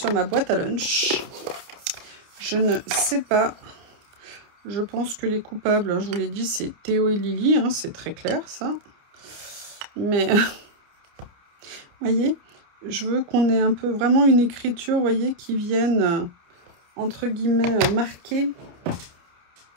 ma boîte à lunch. Je ne sais pas. Je pense que les coupables, je vous l'ai dit, c'est Théo et Lily. Hein, c'est très clair, ça. Mais, vous voyez, je veux qu'on ait un peu vraiment une écriture, vous voyez, qui vienne, entre guillemets, marquer.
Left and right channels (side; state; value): left; late; 29 ms